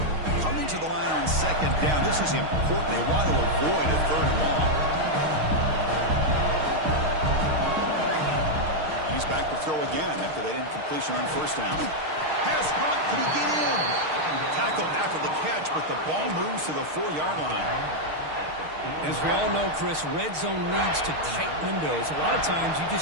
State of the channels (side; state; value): left; late; 6.5 ms